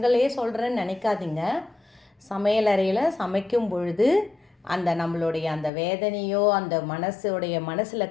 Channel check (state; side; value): drops out; right; at 5.7 s